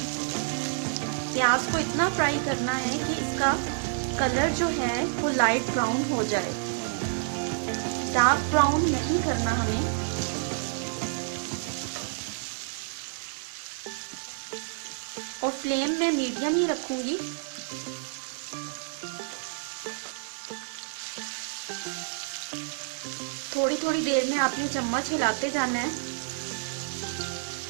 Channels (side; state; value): left; silent; 59 dB below the other